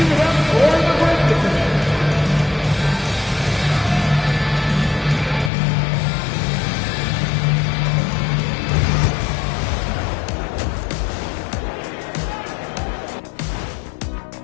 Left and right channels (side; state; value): right; drops out; at 5.5 s